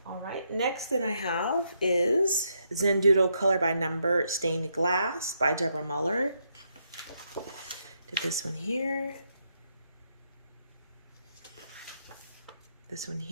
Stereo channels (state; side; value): inverted; both; correlation -0.77